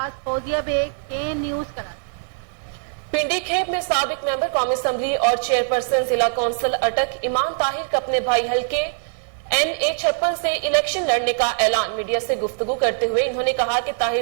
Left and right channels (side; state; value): left; silent; 64 dB below the other